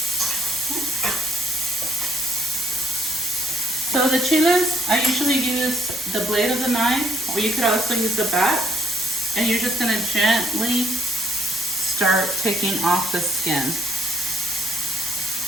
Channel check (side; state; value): both; normal; correlation 0.68